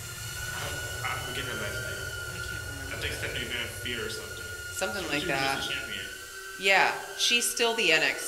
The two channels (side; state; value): both; identical; correlation 1.00